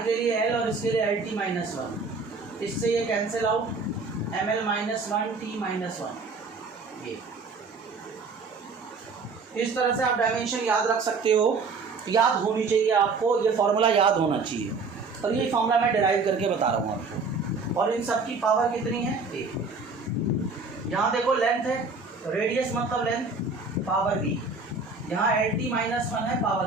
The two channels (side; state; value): left; quieter; 4.2 dB